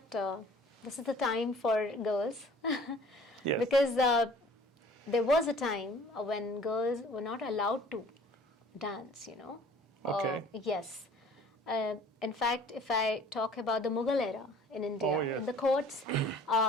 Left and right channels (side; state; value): both; normal; correlation 0.50